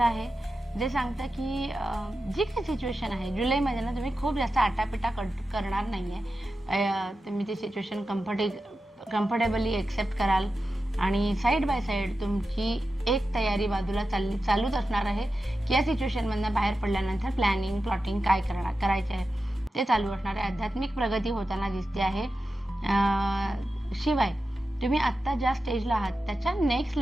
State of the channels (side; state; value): both; normal; correlation 0.92